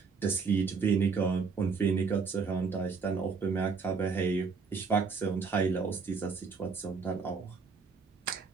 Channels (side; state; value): left; quieter; 5.2 dB